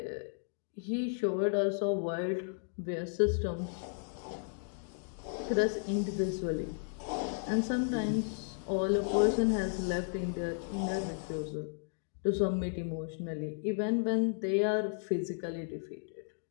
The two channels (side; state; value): right; silent; digital silence